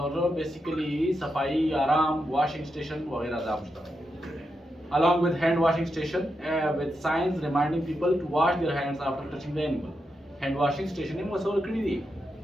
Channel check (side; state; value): both; normal; correlation 0.86